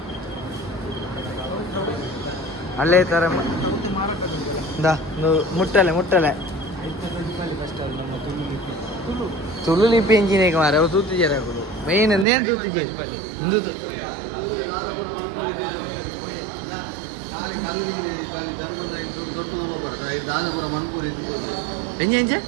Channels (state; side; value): drops out; left; at 12.2 s